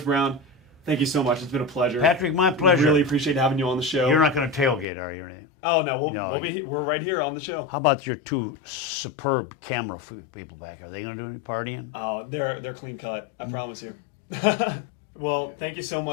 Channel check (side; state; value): right; drops out; at 4.9 s